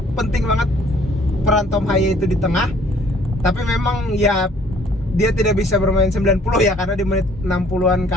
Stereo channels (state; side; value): normal; both; correlation 0.59